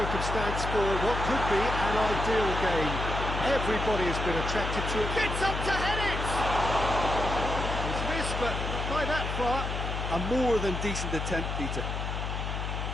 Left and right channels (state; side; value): noise; left; hum, 3 dB below the sound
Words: for what could be an ideal game. Everybody has been attracted to it. Gets up to head it! It's missed, but not by that far. A more than decent attempt, Peter.